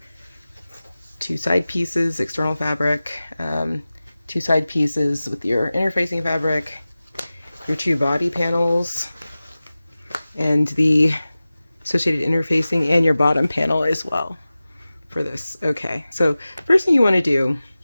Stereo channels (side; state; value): both; inverted; correlation -0.96